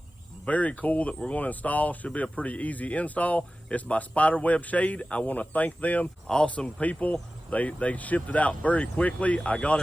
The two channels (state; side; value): normal; both; correlation 0.95